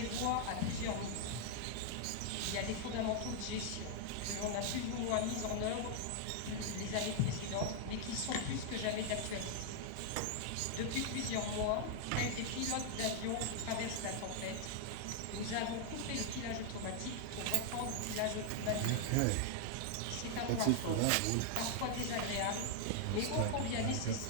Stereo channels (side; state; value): both; different; correlation 0.00